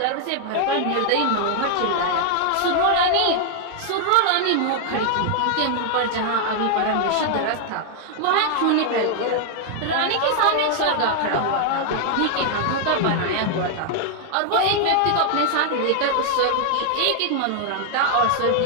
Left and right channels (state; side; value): different; both; correlation 0.00